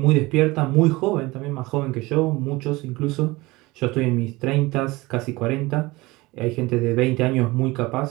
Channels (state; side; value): quieter; left; 21.7 dB